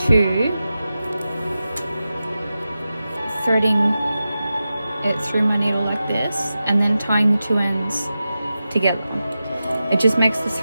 two, threading it through my needle like this, and then tying the two ends together. It just makes the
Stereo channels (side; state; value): both; inverted; correlation -0.93